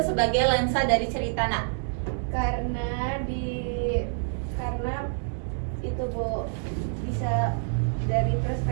sebagai lensa dari cerita nak? Karena itu Bu, bisa dari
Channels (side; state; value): left; silent; digital silence